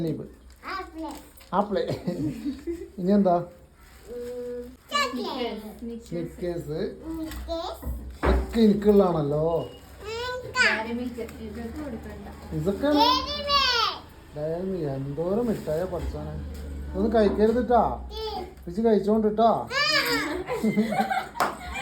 ആപ്പിള്, ഇനി എന്താ സ്നിക്കേഴ്സ് ഒക്കെ എനിക്കുള്ളതാണല്ലോ. ഇതൊക്കെ എന്തോരം മിഠായ പഠിച്ചാണ്. ഇതൊന്നും കഴിക്കരുതിട്ടാ, പിച്ച് കഴിച്ചോണ്ടിട്ടാ.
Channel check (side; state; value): both; identical; correlation 1.00